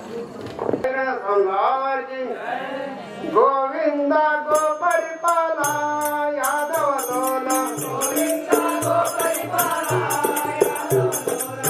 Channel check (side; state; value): both; identical; correlation 1.00